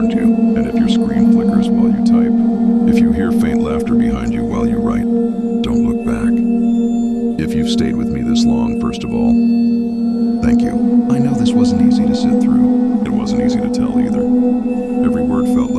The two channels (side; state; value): both; identical; correlation 1.00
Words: you, and if your screen flickers while you type, if you hear faint laughter behind you while you write, don't look back. If you've stayed with me this long, first of all, thank you. I know this wasn't easy to sit through. It wasn't easy to tell either. Every word felt